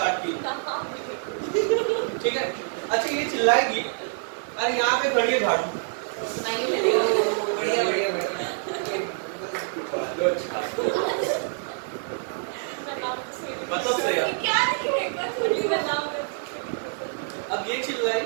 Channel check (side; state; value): left; silent; digital silence